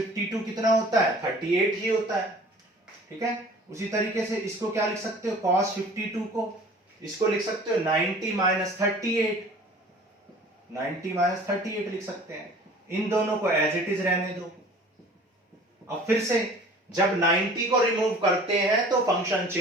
कितना होता है 38 ही होता है, ठीक है। उसी तरीके से इसको क्या लिख सकते हो cos 52 को, इसको लिख सकते हो 90 माइनस 38, 90 माइनस 38 लिख सकते हैं। इन दोनों को एज इट इज रहने दो। अब फिर से जब 90 को रिमूव करते हैं तो फंक्शन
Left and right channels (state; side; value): normal; both; correlation 0.47